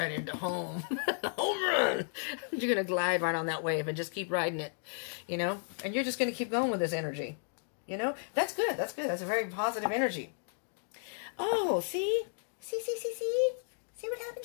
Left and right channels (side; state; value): right; silent; 55 dB below the other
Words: into home. Home run! You're going to glide right on that wave and just keep riding it, you know? And you're just going to keep going with this energy, you know? That's good. That's good. That's a very positive energy. Oh, see? See what